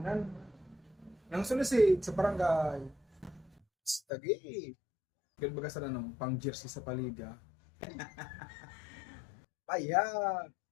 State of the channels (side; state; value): right; drops out; at 4.0 s